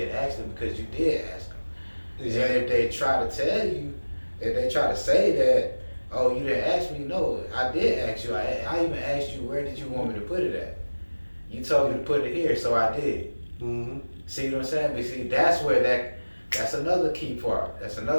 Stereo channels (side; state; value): both; inverted; correlation -1.00